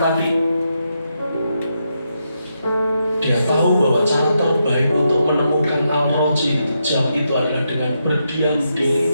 dia tahu bahwa cara terbaik untuk menemukan Al-Roji jam itu adalah dengan berdiam diri.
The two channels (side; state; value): both; inverted; correlation -0.82